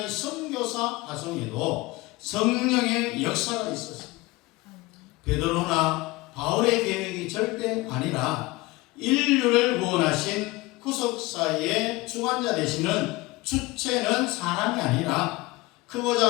이 선교사 파송에도 성령의 역사가 있었습니다. 베드로나 바울의 계획이 절대 아니라 인류를 구원하신 구속사의 주관자 되시는 주체는 사람이 아니라 크고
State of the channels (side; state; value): right; quieter; 21.4 dB